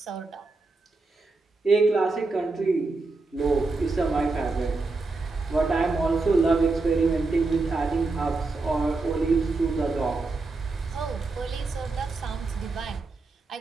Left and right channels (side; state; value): left; quieter; 3.6 dB